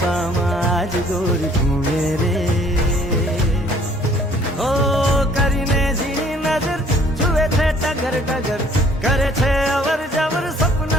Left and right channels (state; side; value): normal; both; correlation 0.58